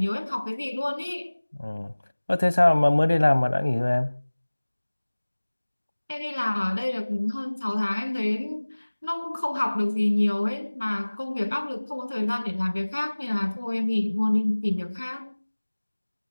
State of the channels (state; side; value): inverted; both; correlation -1.00